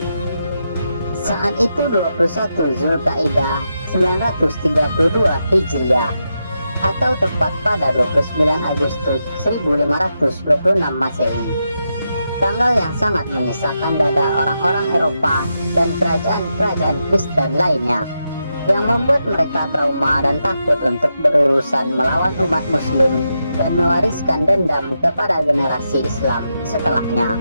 Saat itu 21 Zulkaidah 932 Hijriah atau tepat pada 29 Agustus 1526 Masehi. Tanggal yang sangat menyesakkan dada orang-orang Eropa dan kerajaan-kerajaan Kristen lainnya, yang membuat mereka trauma dan takut untuk berurusan melawan umat muslim dan mewariskan dendam kepada generasi Islam setelahnya.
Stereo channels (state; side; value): inverted; both; correlation -0.85